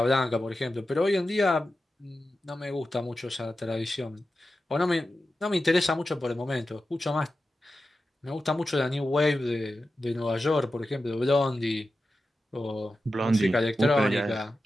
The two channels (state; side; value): normal; both; correlation 0.92